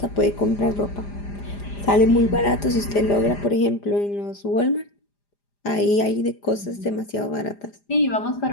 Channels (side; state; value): right; late; 4.9 ms